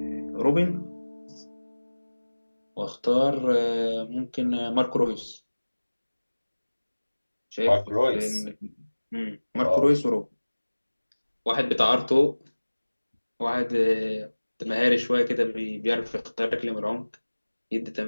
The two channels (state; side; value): inverted; both; correlation -1.00